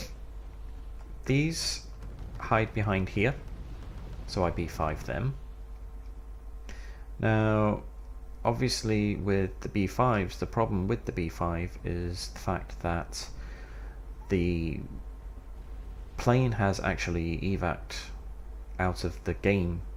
These hide behind here, so I B5 them. Now obviously with the B5s, the problem with the B5 is the fact that the plane has actually evac'd out of the game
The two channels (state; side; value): identical; both; correlation 1.00